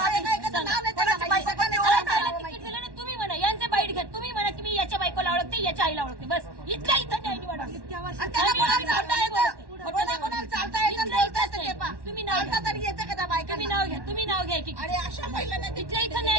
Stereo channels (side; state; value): left; late; 1.1 ms